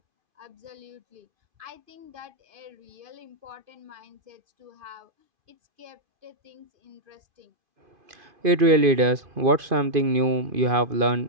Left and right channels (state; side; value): late; left; 2.5 ms